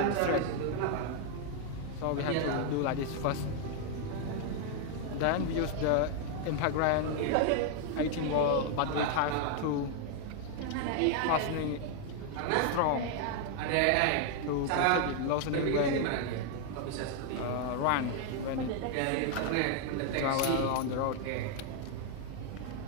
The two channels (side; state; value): both; different; correlation 0.00